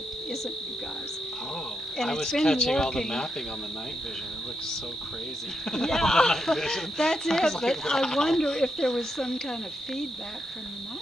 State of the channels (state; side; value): normal; both; correlation 0.82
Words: isn't you guys. Oh, And I it's was been catching all the working. mapping on the night vision. It looks so crazy. Yeah, The night vision. that's I it. was But like, I wow. wonder if there was some kind of feedback from the